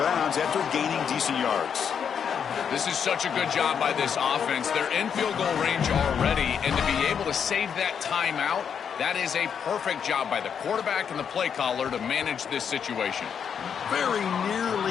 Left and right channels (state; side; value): quieter; right; 7.4 dB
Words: bounds after gaining decent yards. This is such a good job by this offense. They're in field goal range already, and to be able to save that timeout, that is a perfect job by the quarterback and the play caller to manage this situation. Very